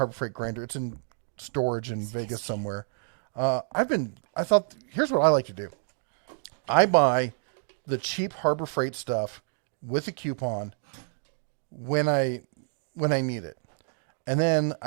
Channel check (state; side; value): silent; left; 59 dB below the other